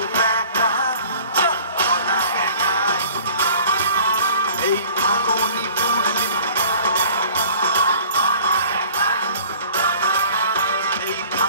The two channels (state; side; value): inverted; both; correlation -0.49